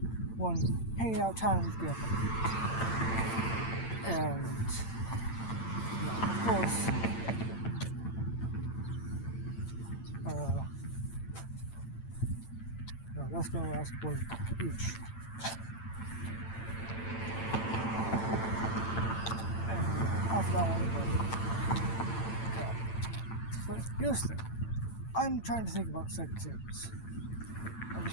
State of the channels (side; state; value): right; late; 8.9 ms